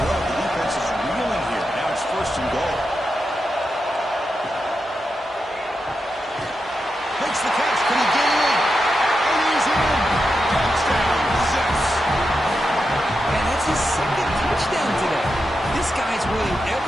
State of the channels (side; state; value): both; normal; correlation 0.88